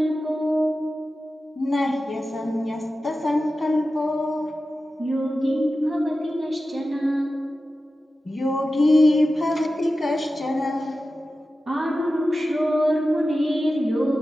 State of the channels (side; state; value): both; normal; correlation 0.93